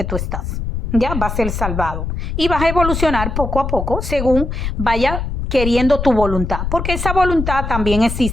tú estás. Ya va a ser salvado y vas a evolucionar poco a poco según vaya queriendo tu voluntad, porque esa voluntad también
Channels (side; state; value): left; noise; rumble, 4 dB below the sound